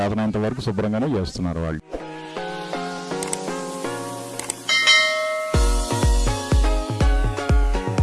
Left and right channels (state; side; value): identical; both; correlation 1.00